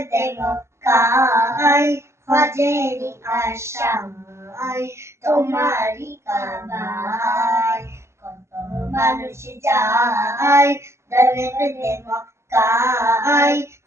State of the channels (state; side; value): late; left; 0.13 ms